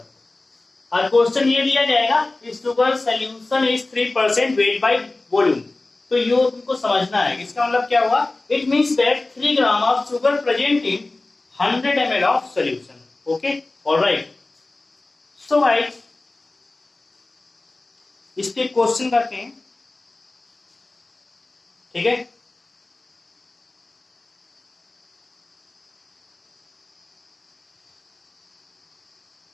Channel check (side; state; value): right; quieter; 3.1 dB